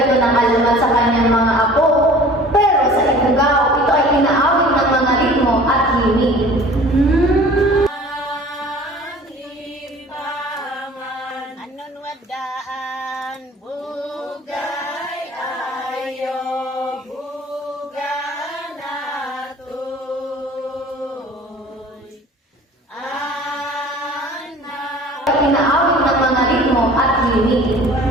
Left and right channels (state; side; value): normal; both; correlation 0.46